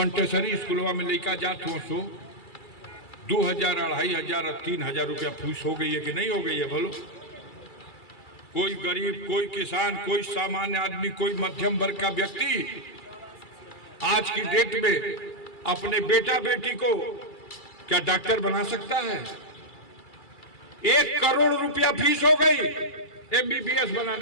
स्कूलवा में लेकर जात हो, सो 2000, 2500 और 3000 रुपया फीस हो गई है कि नहीं हो गई है? बोलो। कोई गरीब, कोई किसान, कोई सामान्य आदमी, कोई मध्यम वर्ग का व्यक्ति आज की डेट में अपने बेटा बेटी को क्या डॉक्टर बना सकता है? 1 करोड़ रुपया फीस हो गई MBBS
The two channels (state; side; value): late; right; 2.3 ms